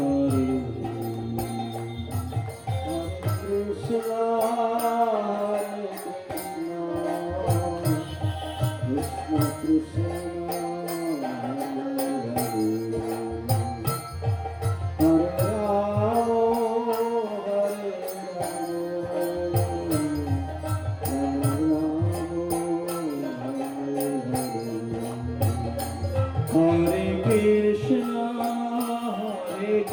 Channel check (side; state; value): both; identical; correlation 1.00